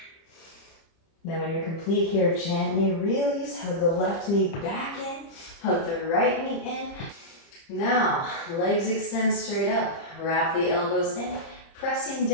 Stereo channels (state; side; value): late; right; 30 ms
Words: Then when you're complete here, gently release, hug the left knee back in, hug the right knee in. Now, legs extend straight up, wrap the elbows in, pressing